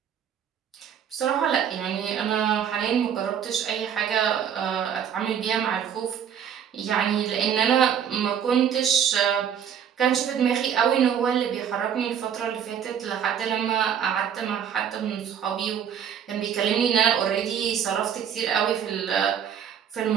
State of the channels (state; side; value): quieter; left; 8.5 dB